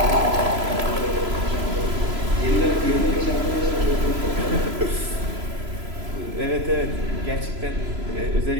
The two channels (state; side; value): late; left; 3.0 ms